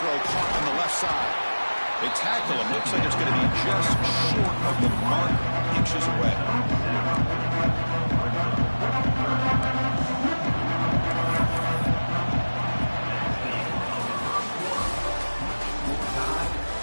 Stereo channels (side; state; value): both; inverted; correlation -1.00